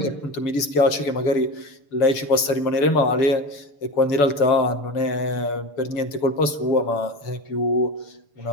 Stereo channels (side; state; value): right; late; 6.9 ms